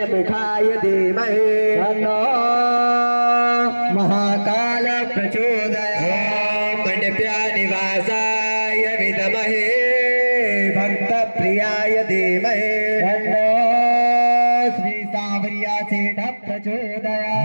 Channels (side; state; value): both; inverted; correlation -1.00